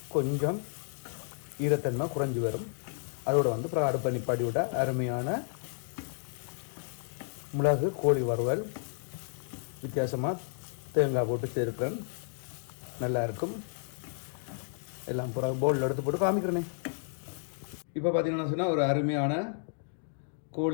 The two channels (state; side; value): silent; right; digital silence